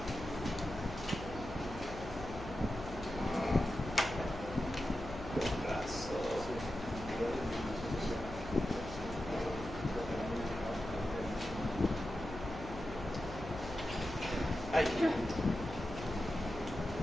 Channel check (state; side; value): noise; left; hum, 11 dB below the sound